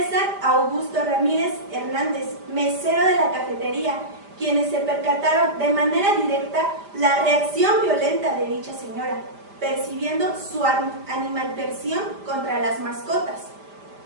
Augusto Ramírez Hernández, mesero de la cafetería, quienes se percataron de manera directa la reacción violenta de dicha señora, percibiendo su animadversión contra las mascotas.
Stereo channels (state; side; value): late; left; 5.0 ms